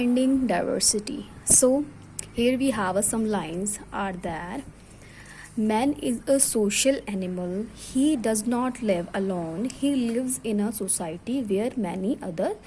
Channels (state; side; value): identical; both; correlation 1.00